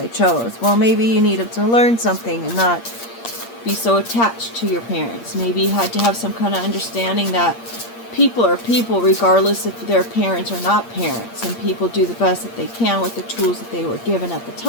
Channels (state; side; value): late; right; 8.6 ms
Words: chose? Well, maybe you needed to learn something and not be so attached to your parents. Maybe you had to have some kind of understanding that people are people regardless if they're parents or not parents, and people do the best that they can with the tools that they were given at the